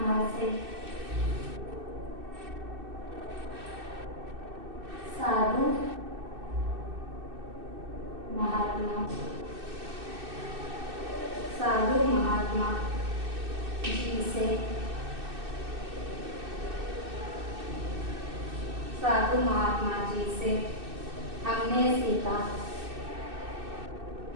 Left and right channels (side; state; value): left; late; 2.6 ms